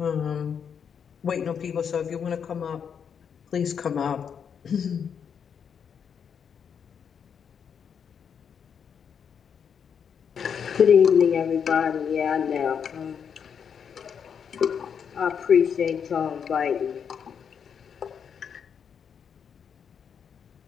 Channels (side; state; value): right; quieter; 7.3 dB